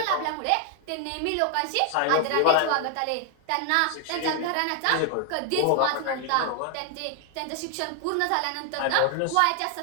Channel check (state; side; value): different; both; correlation 0.00